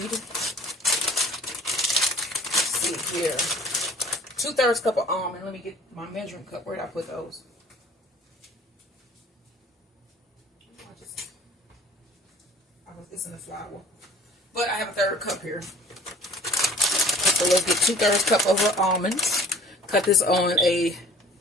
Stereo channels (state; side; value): normal; both; correlation 0.49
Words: let's see here, 2/3 cup of almond. Let me get my measuring cup. Where did I put those? It's in the flour. But I have a 1/3 cup here. So let's get 2/3 cup of our almonds. Cut this on a